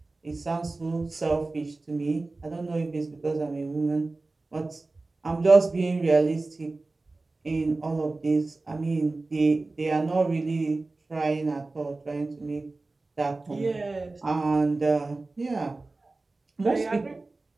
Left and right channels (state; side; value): quieter; left; 3.3 dB